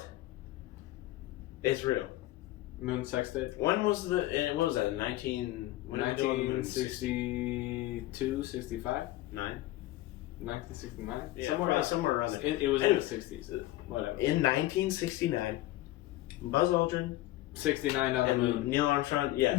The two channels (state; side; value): quieter; right; 16.5 dB